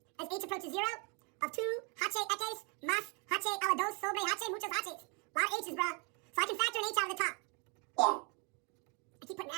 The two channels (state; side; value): quieter; left; 34.0 dB